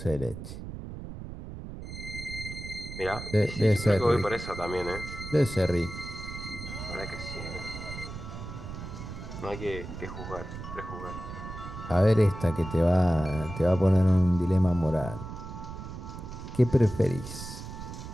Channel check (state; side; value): noise; right; rumble, 10 dB below the sound